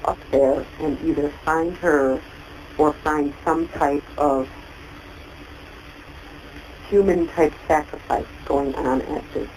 up there and either find her or find some type of human-type sacrifice going on at this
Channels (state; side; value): identical; both; correlation 1.00